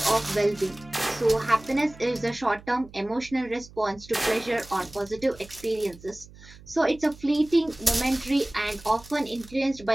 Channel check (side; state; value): right; noise; hum, 21 dB below the sound